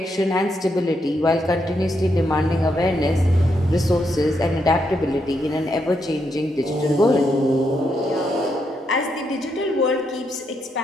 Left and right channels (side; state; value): both; normal; correlation 0.80